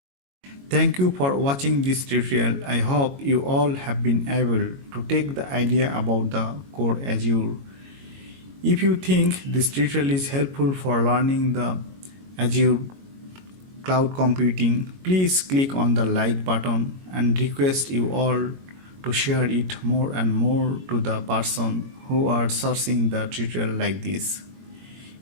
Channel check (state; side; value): late; left; 22 ms